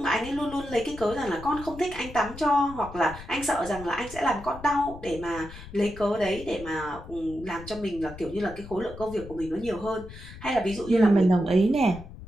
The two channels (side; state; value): left; noise; rumble, 15 dB below the sound